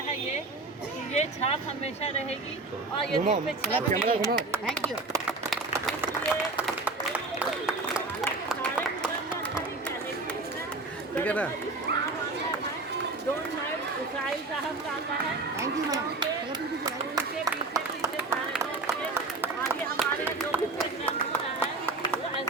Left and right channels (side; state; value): left; quieter; 3.4 dB